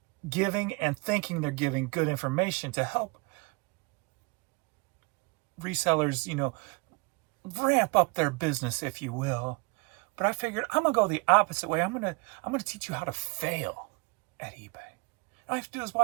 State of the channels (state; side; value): quieter; left; 29.2 dB